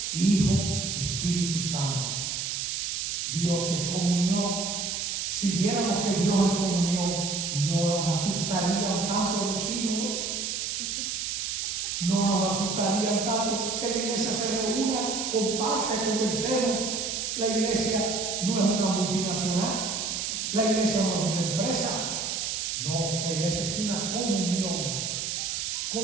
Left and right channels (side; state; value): right; noise; hiss, 2 dB below the sound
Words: Hijo, Espíritu Santo. Dios es comunión. Si viéramos que Dios es comunión, no nos asustarían tanto los hijos, no nos asustarían tanto que la iglesia se reúna, comparte, conversemos. La iglesia no es una multinacional, la iglesia no es una empresa, no, la iglesia es una